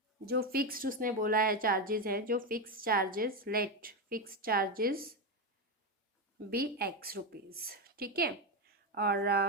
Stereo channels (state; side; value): normal; both; correlation 0.11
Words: जो फिक्स्ड उसने बोला है चार्जेस है, जो fix charges, let fix charges be ₹X। ठीक है, और